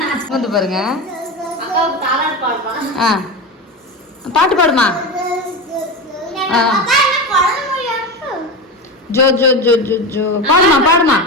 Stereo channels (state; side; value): normal; both; correlation 0.22